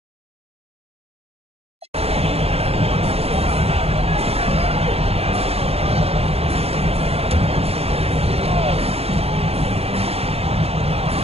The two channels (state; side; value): late; left; 0.29 ms